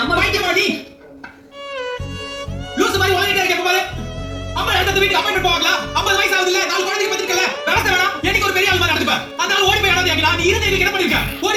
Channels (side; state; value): both; identical; correlation 1.00